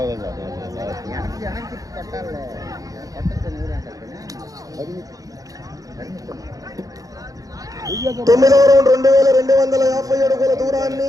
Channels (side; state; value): left; late; 0.17 ms